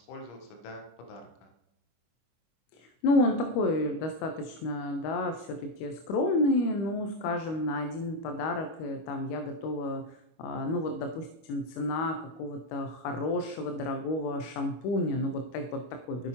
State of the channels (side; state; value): right; late; 25 ms